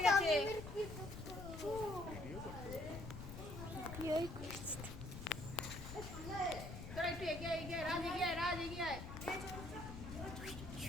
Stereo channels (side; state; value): left; noise; rumble, 9 dB below the sound